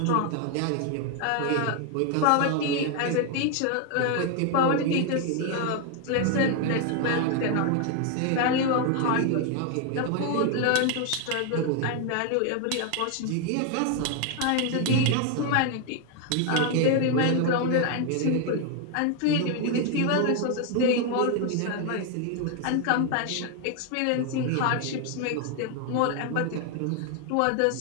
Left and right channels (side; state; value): both; different; correlation 0.01